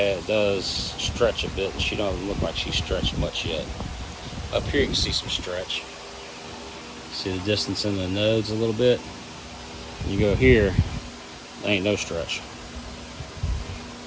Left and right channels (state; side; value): identical; both; correlation 1.00